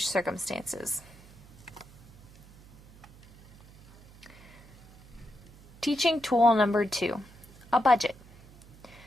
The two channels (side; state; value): right; noise; hum, 22 dB below the sound